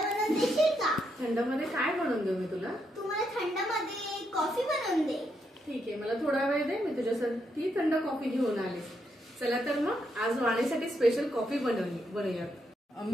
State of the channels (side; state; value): both; normal; correlation 0.79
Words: देशील का? थंड मध्ये काय बनवून देऊ मी तुला? तू मला थंड मध्ये कॉफी बनवून दे. ठीक आहे, मला थोडा वेळ दे, मी तुझ्यासाठी थंड कॉफी घेऊन आले. चला तर मग आज वाणीसाठी स्पेशल कॉफी बनवूया.